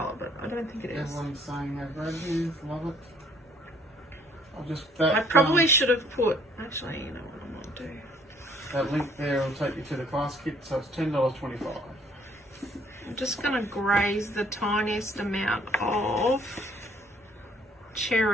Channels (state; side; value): normal; both; correlation 0.61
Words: but I don't think it is. Everyone's saying they've read these, love it. I'll just I probably should have put. Actually, you know what I might do. that link there will take you to the class kit, so it's $10.25. I'm just going to graze the tiniest amount of